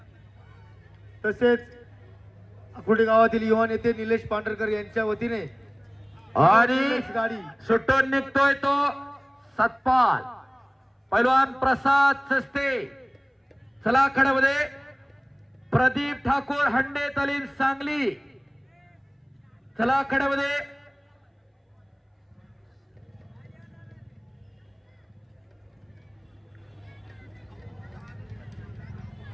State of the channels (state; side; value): identical; both; correlation 1.00